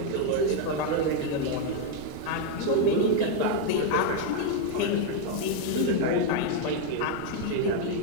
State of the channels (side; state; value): both; different; correlation 0.01